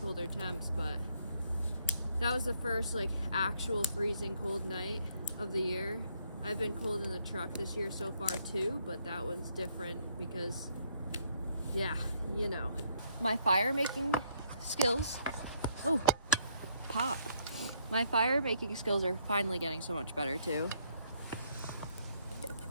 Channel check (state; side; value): inverted; both; correlation -0.69